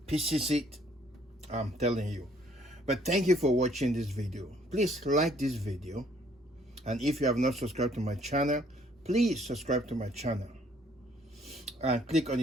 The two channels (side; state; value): both; normal; correlation 0.63